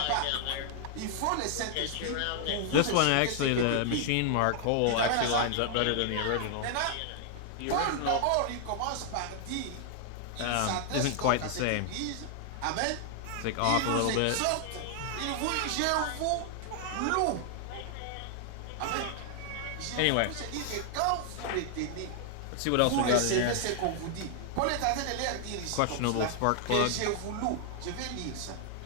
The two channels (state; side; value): different; both; correlation 0.00